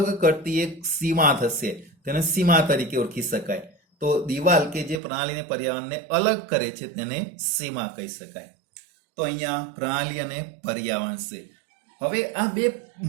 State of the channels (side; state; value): left; drops out; at 5.0 s